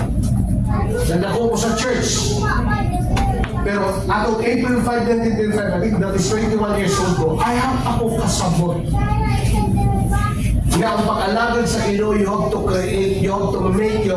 Nandako ko sa church. Pero atong April 5, 1995, I think that is 21 years old ko, I have ako kasabot. Nga ang pag-alagad sa Ginoo, you have to create, you have to make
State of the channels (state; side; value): identical; both; correlation 1.00